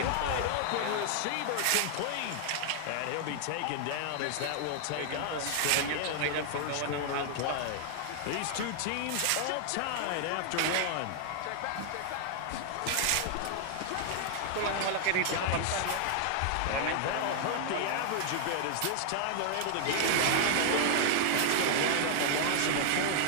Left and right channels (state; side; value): different; both; correlation 0.00